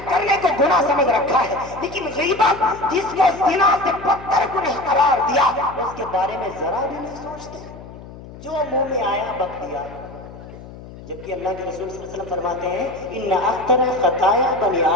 करने को गुनाह समझ रखा है। लेकिन गीबत, जिसको ज़िना से बदतर गुनाह करार दिया, उसके बारे में जरा भी नहीं सोचते, जो मुंह में आया बक दिया। जबकि अल्लाह के रसूल सल्लल्लाहु अलैहि वसल्लम फरमाते हैं इन्ना अक्तर खताया बनी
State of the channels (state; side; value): noise; left; hum, 16 dB below the sound